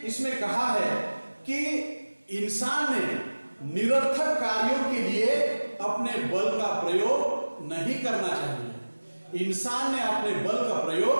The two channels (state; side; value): inverted; both; correlation -1.00